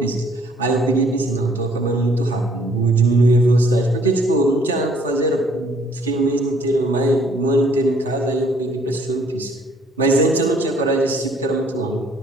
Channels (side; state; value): both; normal; correlation 0.61